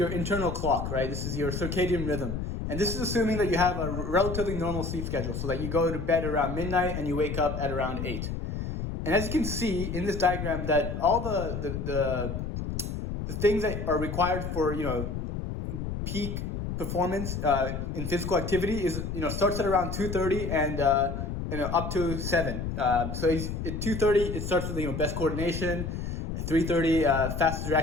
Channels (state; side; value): noise; left; rumble, 4 dB below the sound